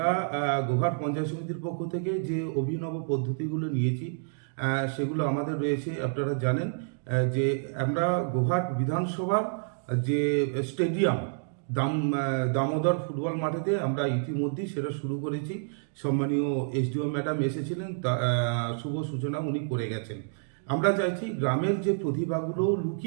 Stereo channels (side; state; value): left; silent; digital silence